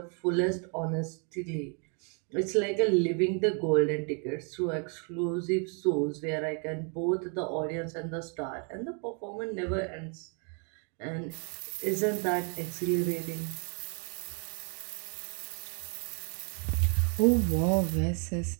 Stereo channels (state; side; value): quieter; left; 38.7 dB